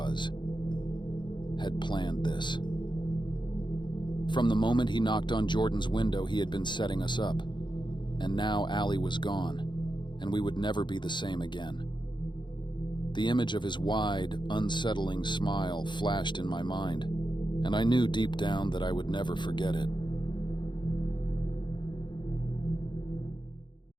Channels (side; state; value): right; late; 0.22 ms